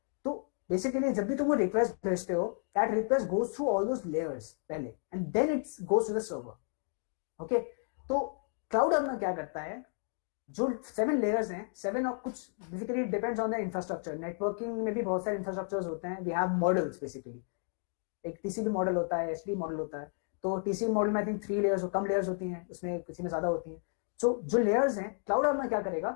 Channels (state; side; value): silent; right; 56 dB below the other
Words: तो बेसिकली जब भी तुम वो रिक्वेस्ट भेजते हो, that request goes through all those layers पहले, and then it goes to the server. Okay, तो क्लाउड आर्मर क्या करता है, जो 7 लेयर्स हैं, 7 और कुछ basically depends on the infrastructure. Networking में भी बहुत सारे इंफ्रास्ट्रक्चर्स होते हैं. वी हैव मॉडल्स बेसिकली, एक टीसीपी मॉडल होता है, एचटीटीपी मॉडल होता है. तो टीसीपी मॉडल में I think 3 layers, come layers होती हैं, उसमें किसी में ज्यादा होती हैं. सो जो लेयर्स हैं, क्लाउड आर्मर क्या